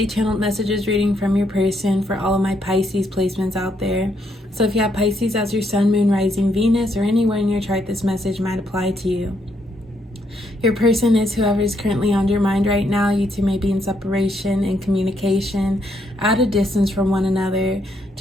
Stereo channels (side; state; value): both; normal; correlation 0.75